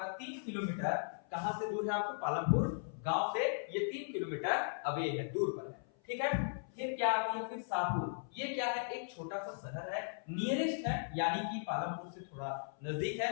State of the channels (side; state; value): right; silent; 53 dB below the other